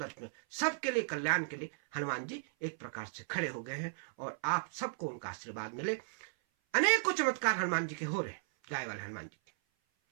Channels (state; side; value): silent; left; 54 dB below the other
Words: में सबके लिए कल्याण के लिए हनुमान जी एक प्रकार से खड़े हो गए हैं, और आप सबको उनका आशीर्वाद मिले। अनेकों चमत्कार हनुमान जी के हो रहे हैं, गाय वाले हनुमान जी के।